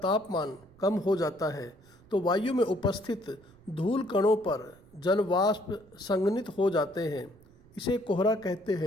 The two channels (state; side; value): noise; right; rumble, 26 dB below the sound